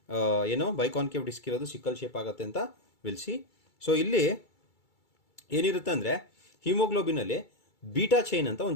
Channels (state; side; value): late; right; 2.3 ms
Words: ಏನೋ ಬೈಕಾನ್ಕೇವ್ ಡಿಸ್ಕ್ ಇರೋದು ಸಿಕ್ಕಲ್ ಶೇಪ್ ಆಗುತ್ತೆ ಅಂತ ವಿಲ್ಸಿ. ಸೊ ಇಲ್ಲಿ ಏನಿರುತ್ತೆ ಅಂದರೆ ಹಿಮೋಗ್ಲೋಬಿನಲ್ಲಿ ಬೀಟಾ ಚೈನ್ ಅಂತ